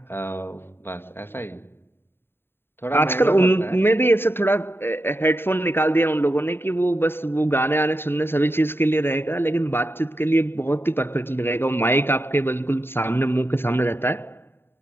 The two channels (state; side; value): late; right; 0.11 ms